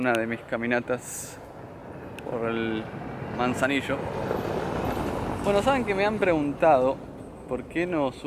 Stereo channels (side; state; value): both; identical; correlation 1.00